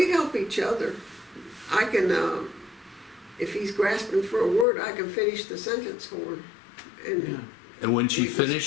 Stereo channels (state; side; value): drops out; right; at 4.7 s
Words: help each other. I can, if he's grasping for a word, I can finish the sentence for him. And Yeah. And when she